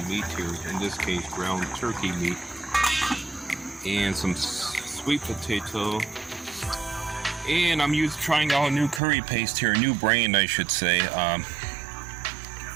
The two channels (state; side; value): drops out; left; at 9.0 s